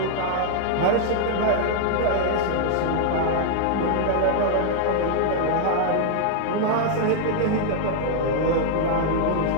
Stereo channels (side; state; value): both; different; correlation 0.00